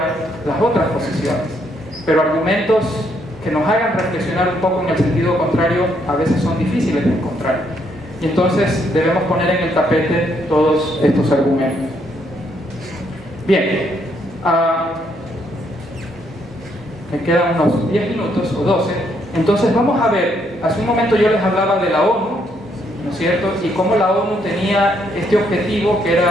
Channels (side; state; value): both; normal; correlation 0.73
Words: las otras posiciones, pero argumentos que nos hagan reflexionar un poco en el sentido contrario a veces son difíciles de encontrar. Y entonces debemos poner en el tapete todos estos argumentos. Bien, me quedan unos 10 minutos o 12. Entonces vamos a ver, hace un momento yo les hablaba de la ONU, ¿no es cierto? Y cómo la ONU tenía este objetivo, que